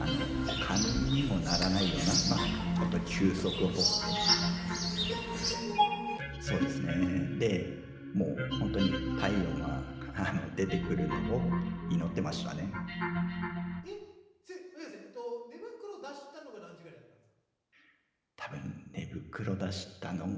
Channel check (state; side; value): identical; both; correlation 1.00